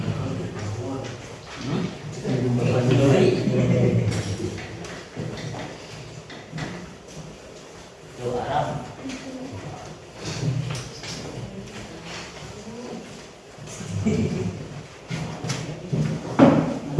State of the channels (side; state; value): both; identical; correlation 1.00